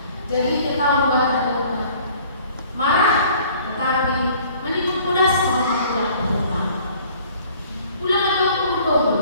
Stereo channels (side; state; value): both; inverted; correlation -0.54